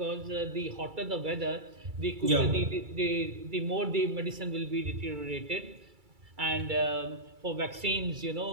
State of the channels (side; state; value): left; late; 2.3 ms